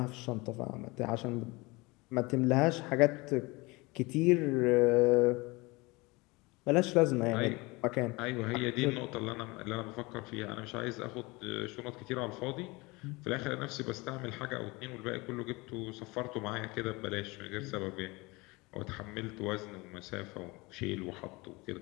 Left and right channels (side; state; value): right; quieter; 24.2 dB